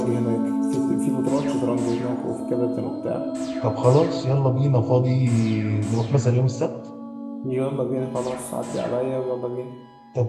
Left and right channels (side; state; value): both; identical; correlation 1.00